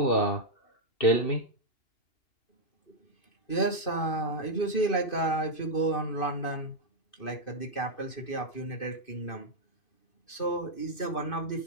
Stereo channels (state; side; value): late; right; 2.5 ms